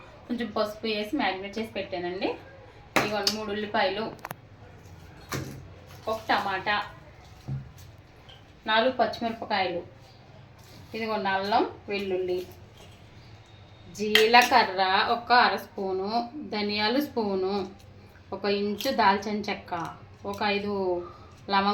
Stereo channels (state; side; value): identical; both; correlation 1.00